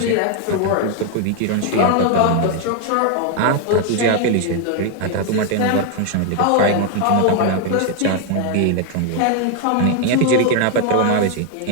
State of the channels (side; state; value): both; different; correlation 0.00